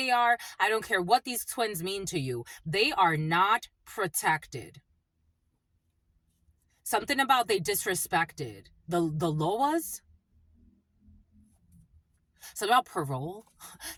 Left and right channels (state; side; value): identical; both; correlation 1.00